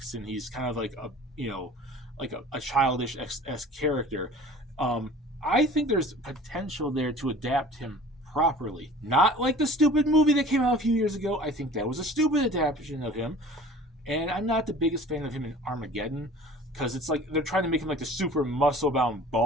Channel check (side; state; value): both; normal; correlation 0.45